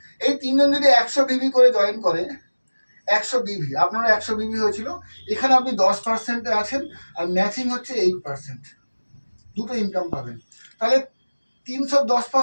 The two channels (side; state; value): both; inverted; correlation -1.00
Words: এই 3 জন যদি 100 বিবি করে জয়েন করে, 100 বিবি, আপনারা 100 বিবি হয়েছিল, এখানে আপনি 10%-এ আছেন, আর ম্যাচিং হচ্ছে 8%, দুটো ইনকাম পাবেন। তাহলে